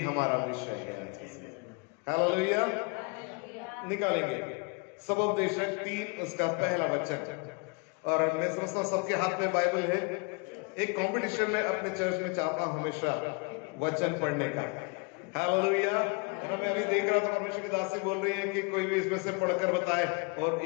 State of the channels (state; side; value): quieter; right; 30.7 dB